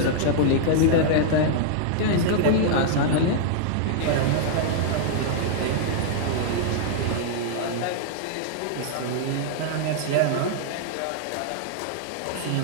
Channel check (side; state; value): both; different; correlation -0.01